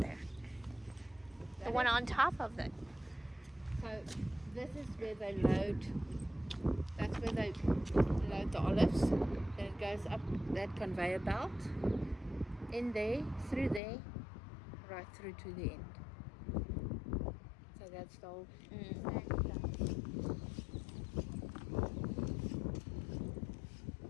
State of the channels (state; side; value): drops out; right; at 13.8 s